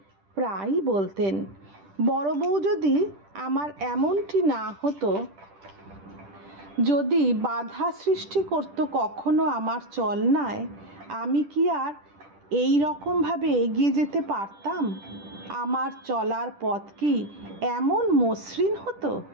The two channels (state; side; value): late; left; 10 ms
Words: প্রায়ই বলতেন, বড় বউ যদি আমার এমনটি না হতো, যদি বাধা সৃষ্টি করতো কখনো আমার চলনায়, আমি কি আর এই রকমভাবে এগিয়ে যেতে পারতাম? আমার চলার পথ কি এমন মসৃণ